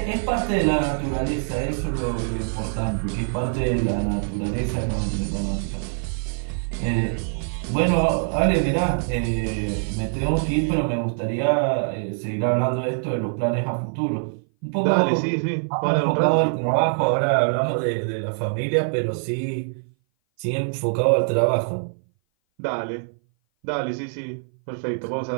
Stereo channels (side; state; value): left; silent; 58 dB below the other